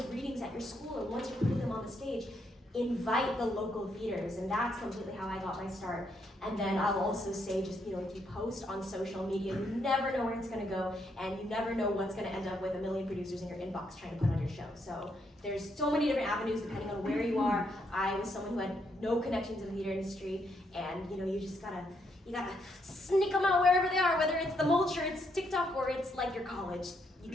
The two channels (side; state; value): both; normal; correlation 0.76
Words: readings at your school, or once you're putting them on the stage, invite the local theaters, and that's completely how I got my start. And then I'll also say, just if you post on social media, you never know where it's going to go, and you never know what's going to end up with a million producers in your inbox trying to put on your show. So there's so many different avenues depending on where you are. I was someone who had no connections in the theater industry, and you just gotta sneak them out wherever they are, whether it's the mulch or it's TikTok or it's like your college. You